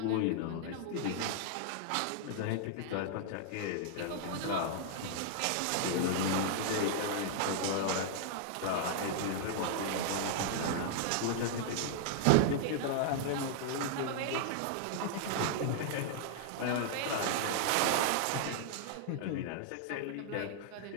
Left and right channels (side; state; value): both; different; correlation 0.00